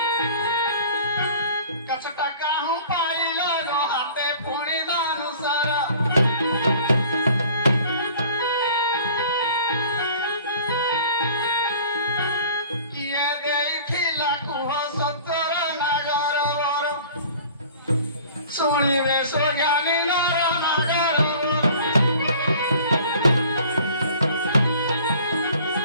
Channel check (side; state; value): both; inverted; correlation -0.47